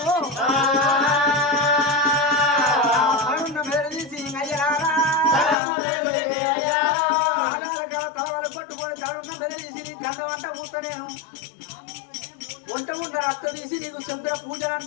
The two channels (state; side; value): drops out; right; at 5.6 s